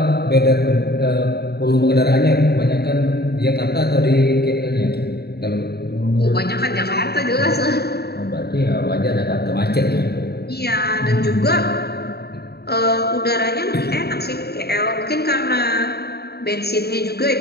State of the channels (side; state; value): right; late; 0.47 ms